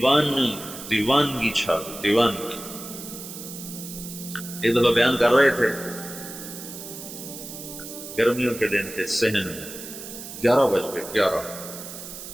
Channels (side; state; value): right; noise; hiss, 11 dB below the sound